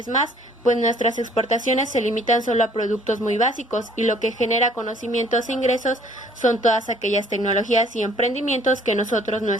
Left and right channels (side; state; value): both; normal; correlation 0.58